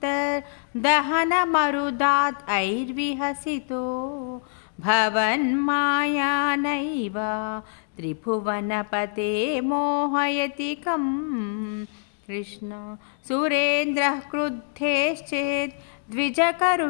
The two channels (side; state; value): right; silent; 61 dB below the other